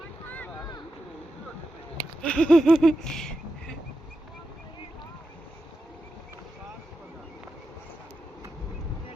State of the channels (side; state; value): both; normal; correlation 0.89